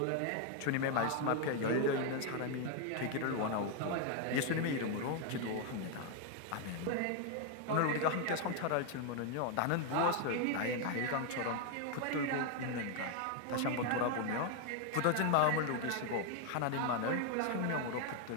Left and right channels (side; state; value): both; different; correlation 0.00